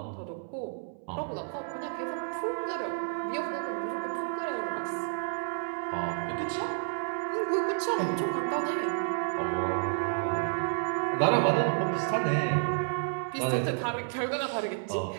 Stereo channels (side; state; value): left; silent; 57 dB below the other